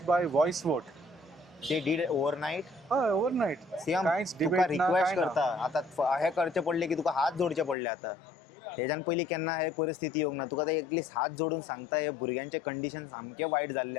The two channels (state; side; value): drops out; right; at 7.8 s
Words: by voice vote. They did overnight. हय ओव्हरनाईट. सीएम कांयच तुका डिबेट ना रिक्वेस्ट काय करता आता हे करचे पडले की तुका हात जोडचे पडले आता. तेज्यान पयलीं केन्ना हे परिस्थिती येवंक ना. तुका ते एटलीस्ट हात जोडून सांगता हे भुरग्यांचे कंडिशन सामके वायट